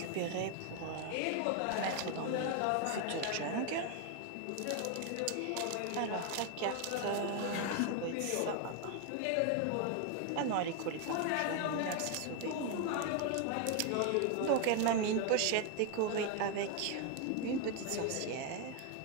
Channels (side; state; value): both; different; correlation 0.01